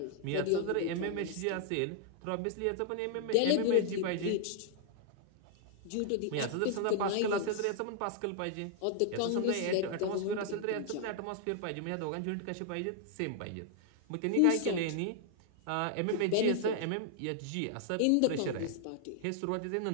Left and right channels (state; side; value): different; both; correlation 0.00